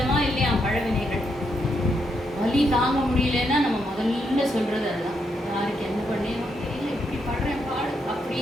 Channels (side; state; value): both; normal; correlation 0.79